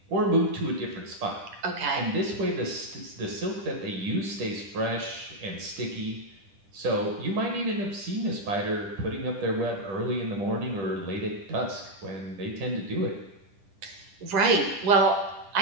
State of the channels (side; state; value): left; late; 10 ms